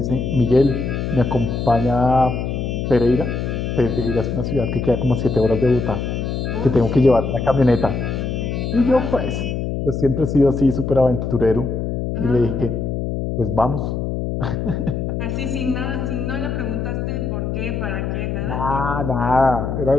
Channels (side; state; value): left; noise; hum, 2 dB below the sound